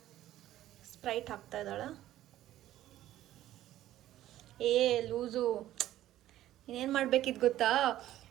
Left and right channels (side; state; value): left; quieter; 13.6 dB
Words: ಸ್ಪ್ರೈಟ್ ಹಾಕ್ತಾ ಇದ್ದಾಳೆ. ಲೂಸು. ಇನ್ನೇನು ಮಾಡಬೇಕಿದ್ದು ಗೊತ್ತಾ?